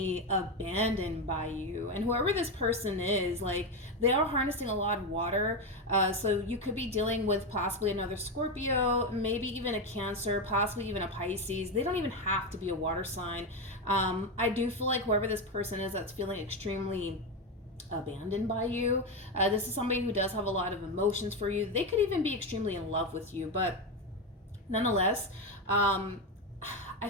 abandoned by you. And whoever this person is, like, they are harnessing a lot of water. So you could be dealing with possibly another Scorpio, maybe even a Cancer, possibly even a Pisces. They don't even have to be a water sign. I do feel like whoever this person is that's feeling extremely abandoned by you, this is somebody who does have a lot of emotions for you. They could even be extremely in love with you, but nonetheless, I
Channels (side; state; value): both; normal; correlation 0.12